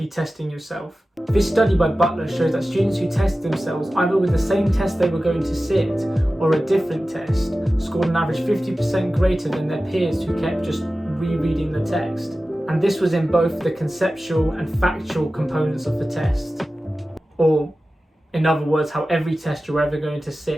testing yourself. This study by Butler shows that students who test themselves either with the same test they were going to sit or a different test scored on average 50% greater than their peers who kept just rereading the text. And this was in both the conceptual and factual components of the test, or in other words, how every test you're ever going to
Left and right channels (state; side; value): normal; both; correlation 0.95